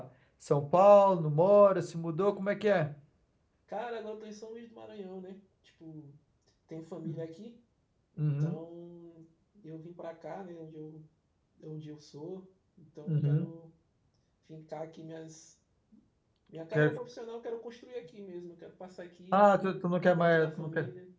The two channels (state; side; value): identical; both; correlation 1.00